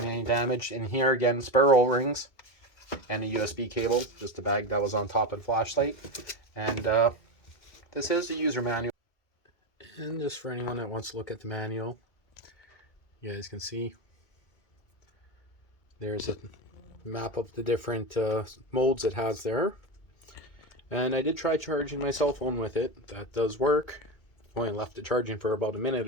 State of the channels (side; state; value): right; late; 2.3 ms